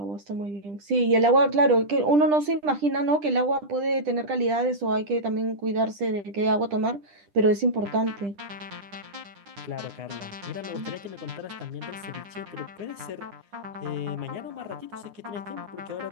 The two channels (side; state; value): left; late; 10 ms